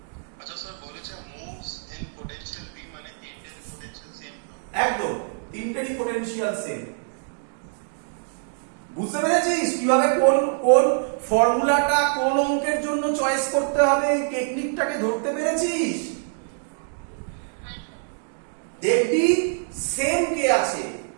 আচ্ছা স্যার বলেছে মুভস ইন পোটেনশিয়াল v মানে তিনটের পোটেনশিয়াল সেম তো। একদম তিনটেরই পটেনশিয়াল সেম বুঝতে পেরেছিস কিভাবে কোন কোন ফর্মুলাটা কোন অঙ্কের জন্য চয়েস করতে হবে এই টেকনিকটাকে ধরতে পেরেছিস হ্যাঁ স্যার দেখবি সেম কে আছে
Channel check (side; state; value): left; silent; digital silence